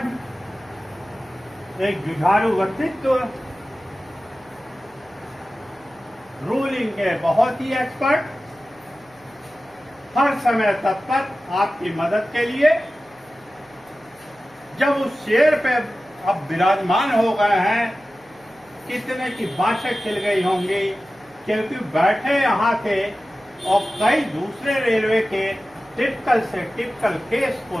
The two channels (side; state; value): right; noise; hum, 30 dB below the sound